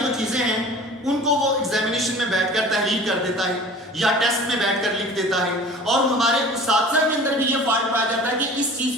چیزیں ہیں ان کو وہ ایگزامینیشن میں بیٹھ کر تحریر کر دیتا ہے یا ٹیسٹ میں بیٹھ کر لکھ دیتا ہے۔ اور ہمارے اساتذہ کے اندر بھی یہ فالٹ پایا جاتا ہے کہ اس چیز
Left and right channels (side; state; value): both; normal; correlation 0.43